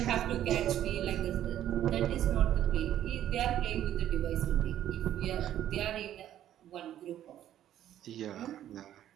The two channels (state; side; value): quieter; left; 11.6 dB